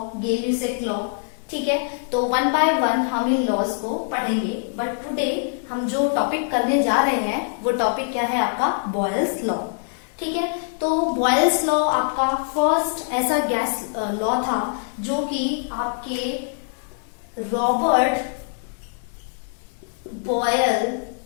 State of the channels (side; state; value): right; silent; 63 dB below the other